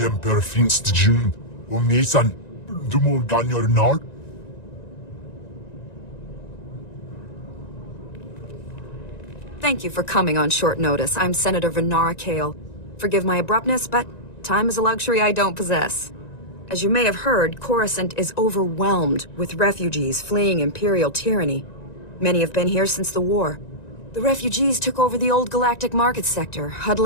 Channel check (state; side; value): late; right; 1.9 ms